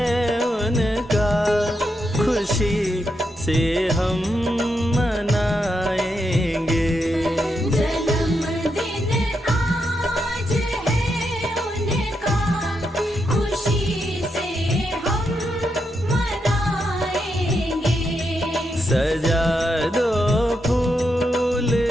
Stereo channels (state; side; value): normal; both; correlation 0.83